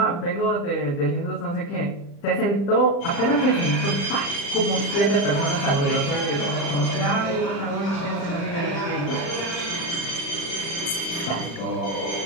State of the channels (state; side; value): late; right; 35 ms